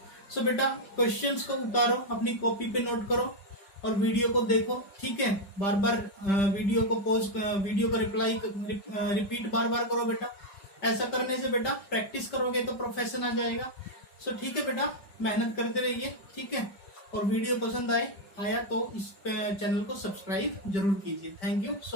सो बेटा क्वेश्चंस को उतारो, अपनी कॉपी पे नोट करो और वीडियो को देखो। ठीक है, बार बार वीडियो को वीडियो को रिपीट बार बार करो बेटा। ऐसा करने से बेटा प्रैक्टिस करोगे तो प्रोफेशन आ जाएगा। सो ठीक है बेटा, मेहनत करते रहिए। ठीक है, और वीडियो पसंद आया तो इस चैनल को सब्सक्राइब जरूर कीजिए। Thank you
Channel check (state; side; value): late; right; 5.1 ms